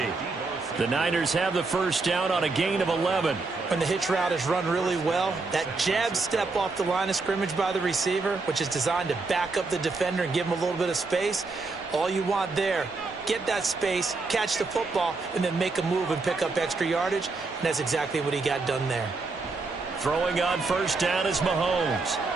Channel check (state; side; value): quieter; left; 3.8 dB